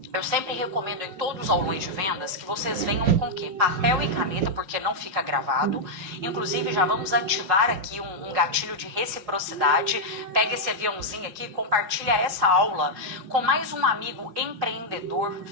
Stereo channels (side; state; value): left; late; 5.4 ms